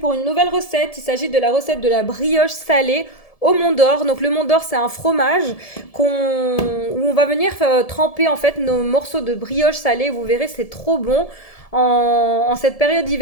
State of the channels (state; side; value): late; right; 1.7 ms